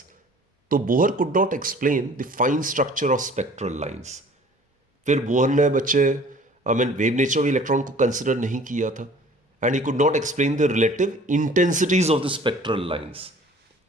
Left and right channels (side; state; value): both; normal; correlation 0.50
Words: तो Bohr could not explain the fine structure of spectral lines. फिर बोहर ने बच्चे वेव नेचर ऑफ इलेक्ट्रॉन को कंसिडर नहीं किया था, and he could not explain the relative intensities of the spectral lines.